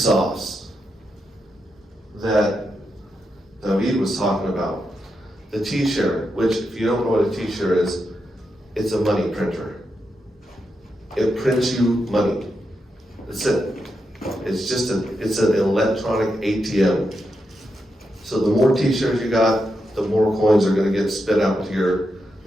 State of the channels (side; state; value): both; normal; correlation 0.85